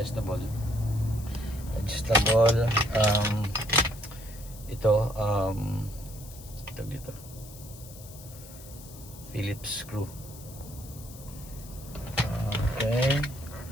Ito, dito. Phillips screw. Okay.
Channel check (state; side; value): noise; left; hiss, 17 dB below the sound